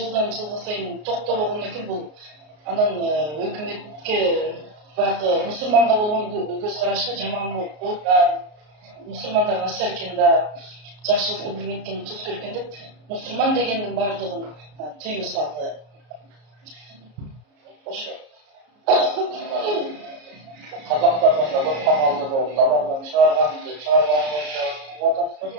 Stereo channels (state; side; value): late; left; 33 ms